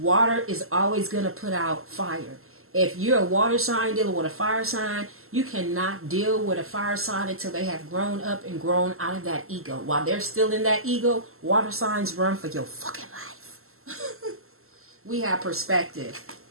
is always going to put out fire. If you're a water sign dealing with a fire sign, you cannot deal with a fire sign until they have grown up and grown out of that ego. While they're still in that ego, water signs run for your fucking life. We have perspective.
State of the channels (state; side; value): late; left; 0.62 ms